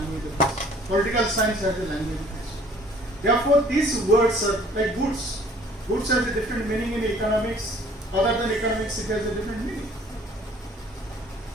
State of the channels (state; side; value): normal; both; correlation 0.54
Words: of its own. Political science has a language of its own. Therefore, these words are like goods. Goods has a different meaning in economics. Other than economics, it has a different meaning.